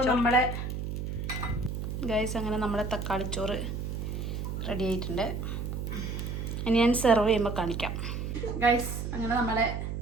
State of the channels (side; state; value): right; noise; hum, 4 dB below the sound